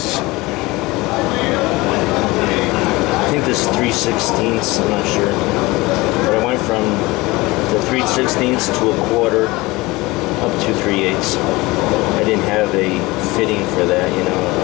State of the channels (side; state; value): right; quieter; 21.7 dB